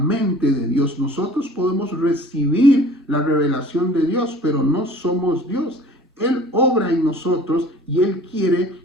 de Dios. Nosotros podemos recibir la revelación de Dios, pero no somos Dios. Él obra en nosotros y Él quiere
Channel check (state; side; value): normal; both; correlation 0.47